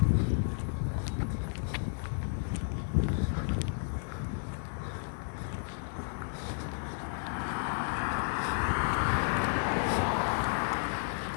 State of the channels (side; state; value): right; silent; 56 dB below the other